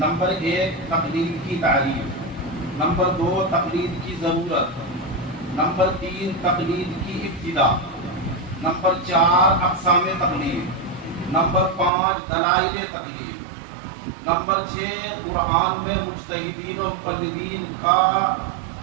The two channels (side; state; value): left; drops out; at 11.9 s